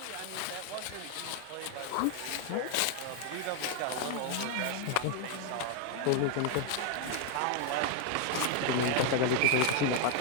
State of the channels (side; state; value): both; different; correlation 0.00